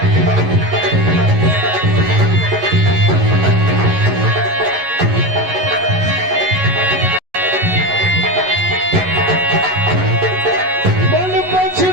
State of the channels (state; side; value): late; left; 11 ms